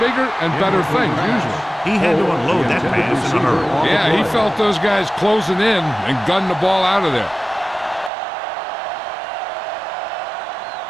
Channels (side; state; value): left; drops out; at 8.1 s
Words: bigger and better things, usually. He had to unload that pass in a hurry. Yeah, he felt those guys closing in and gunned the ball out of there.